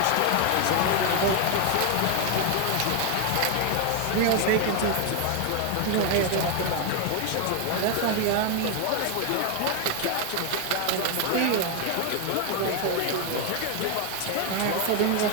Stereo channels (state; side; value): different; both; correlation 0.00